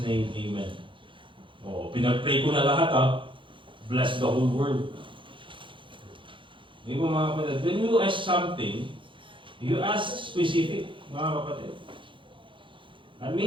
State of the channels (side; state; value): left; late; 0.24 ms